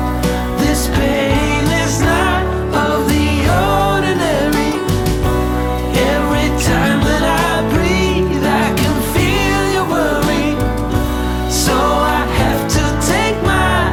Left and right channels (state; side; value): identical; both; correlation 1.00